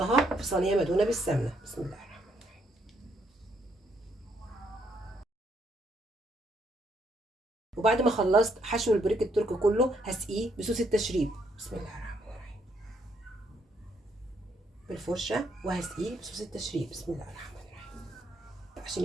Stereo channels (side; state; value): both; normal; correlation 0.73